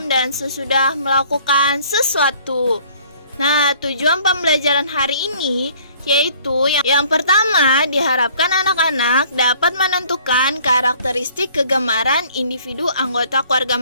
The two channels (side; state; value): both; inverted; correlation -0.55